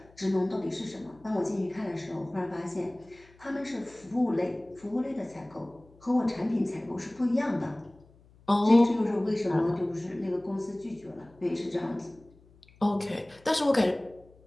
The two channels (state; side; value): noise; left; hum, 27 dB below the sound